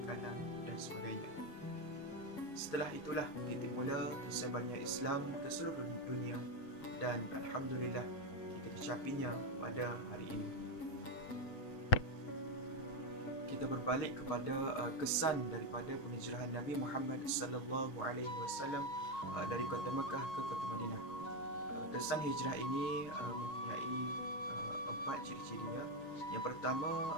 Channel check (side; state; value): right; late; 6.8 ms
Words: makanan dan sebagainya. Setelah itulah titik mula tersebarnya Islam ke seluruh dunia, dan alhamdulillah kita dicapinya pada hari ini. Kita berbalik kepada kesan daripada penghijrahan Nabi Muhammad sallallahu alaihi wasallam dari kota Mekah ke kota Madinah. Kesan hijrah ini mempunyai 4 ciri-cirinya. Yang pertama,